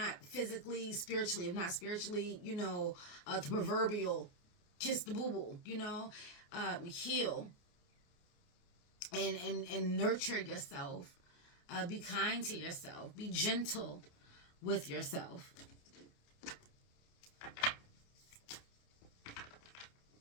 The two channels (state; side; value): late; right; 28 ms